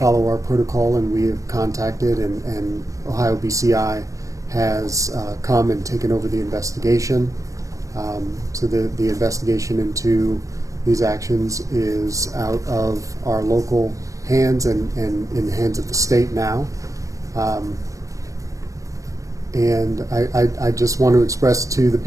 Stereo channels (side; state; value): left; late; 0.16 ms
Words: our protocol, and we have contacted, and Ohio BCI has come and taken over the investigation. So the investigation into these actions is out of our local hands and in the hands of the state now. And I just want to express to the